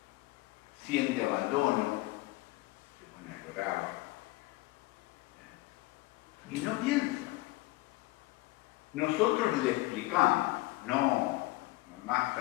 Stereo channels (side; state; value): right; quieter; 20.4 dB